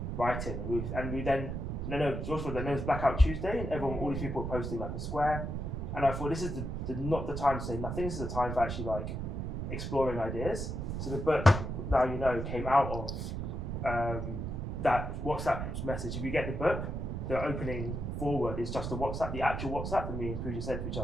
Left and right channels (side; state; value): right; noise; rumble, 4 dB below the sound